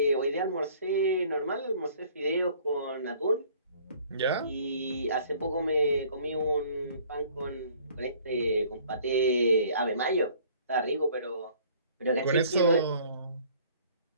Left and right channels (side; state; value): both; inverted; correlation -0.54